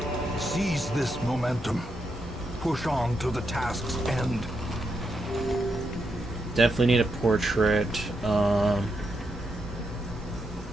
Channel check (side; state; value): both; normal; correlation 0.83